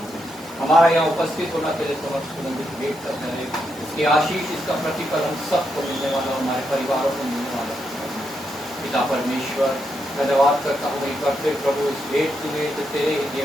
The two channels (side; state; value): both; normal; correlation 0.81